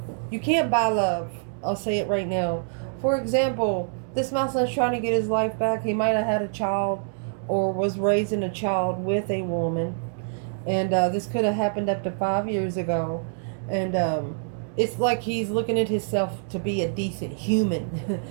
You can't buy love. I'll say it right now. For example, this masculine is trying to get his life back. He might have had a child or was raising a child with a woman. And this could have happened up to 5 years ago. And it's like he's looking at himself to be a decent human.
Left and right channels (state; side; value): silent; left; digital silence